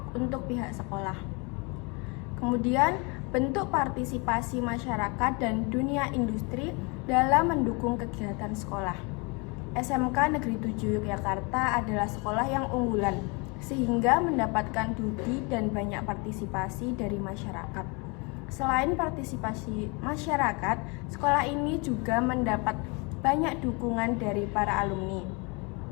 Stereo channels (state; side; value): quieter; right; 30.4 dB